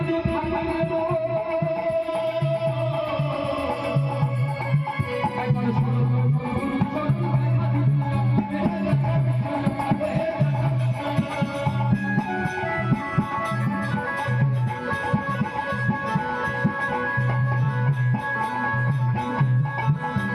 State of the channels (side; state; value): both; identical; correlation 1.00